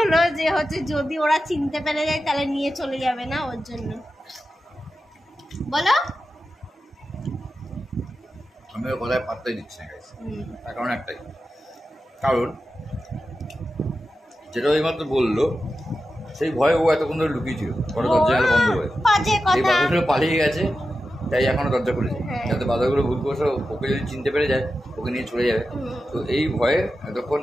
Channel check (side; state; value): both; normal; correlation 0.91